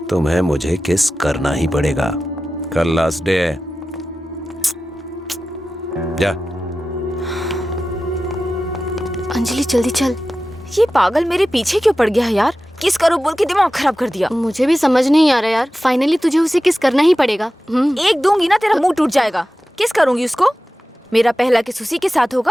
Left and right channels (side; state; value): both; normal; correlation 0.94